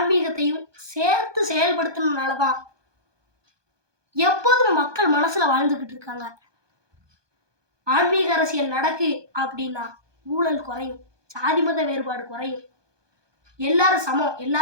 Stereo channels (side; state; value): left; late; 1.2 ms